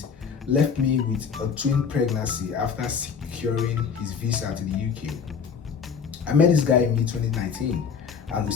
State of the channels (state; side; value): quieter; right; 6.4 dB